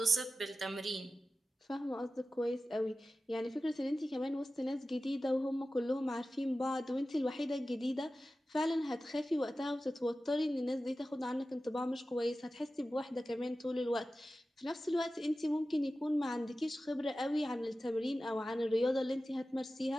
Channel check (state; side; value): normal; both; correlation 0.94